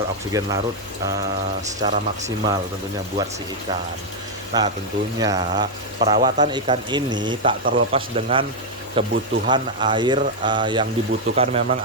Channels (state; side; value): normal; both; correlation 0.00